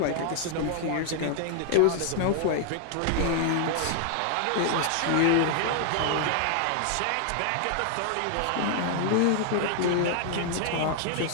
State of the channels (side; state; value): both; different; correlation 0.00